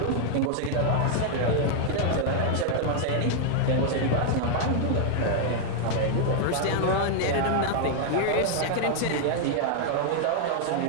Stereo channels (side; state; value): both; different; correlation 0.00